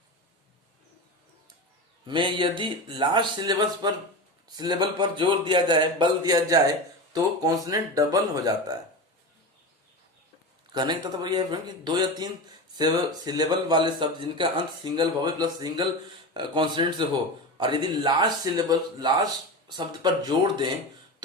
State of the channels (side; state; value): both; normal; correlation 0.25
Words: में यदि लास्ट सिलेबल पर जोर दिया जाए, बल दिया जाए तो कॉन्सोनेंट डबल हो जाता है। कहने का तात्पर्य यह है कि 2 या 3 सिलेबल वाले शब्द जिनका अंत single vowel plus single consonant से हो और यदि लास्ट शब्द पर जोड़ दें